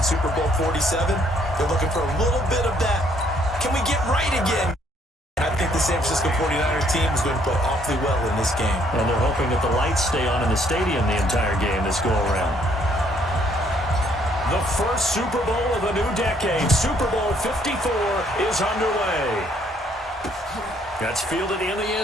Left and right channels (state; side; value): normal; both; correlation 0.66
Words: Super Bowl 47. They're looking for a little bit of that. Can we get right again? I think the San Francisco 49ers team is going to play awfully well in this game. And they're hoping that the lights stay on in the stadium the entire game this go-around. The first Super Bowl of a new decade, Super Bowl 54, is underway. That's fielded in the